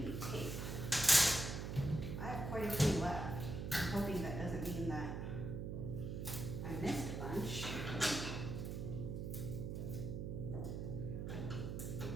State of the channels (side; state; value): right; noise; hum, 4 dB below the sound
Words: tape. I have quite a few left. I'm hoping that doesn't mean that I missed a bunch.